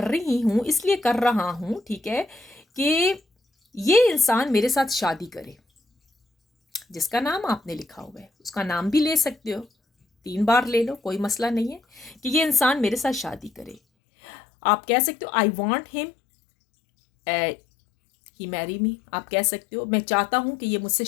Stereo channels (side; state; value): right; drops out; at 13.8 s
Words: रही हूँ, इसलिए कर रहा हूँ, ठीक है, कि ये इंसान मेरे साथ शादी करे। जिसका नाम आपने लिखा हुआ है उसका नाम भी ले सकते हो, 3 बार ले लो, कोई मसला नहीं है, कि ये इंसान मेरे साथ शादी करे। आप कह सकते हो I want him he marry me. आप कह सकते हो मैं चाहता हूँ कि ये मुझसे